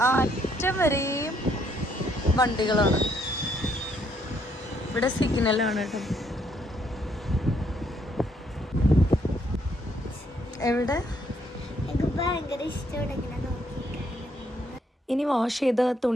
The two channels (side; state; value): both; normal; correlation 0.70